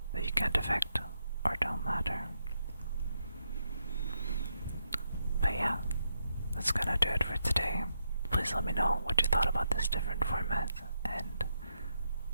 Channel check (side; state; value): both; inverted; correlation -0.81